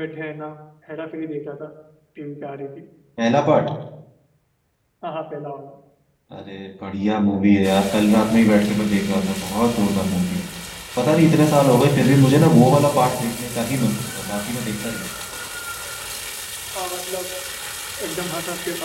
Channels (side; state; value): both; identical; correlation 1.00